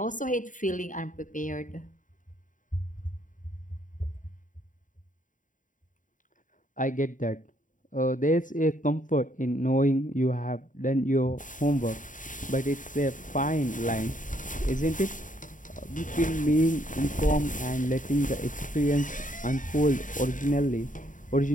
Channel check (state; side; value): late; right; 0.38 ms